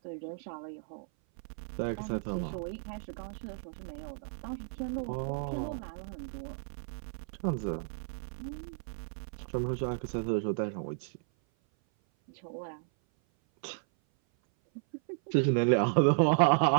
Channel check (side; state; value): left; silent; 55 dB below the other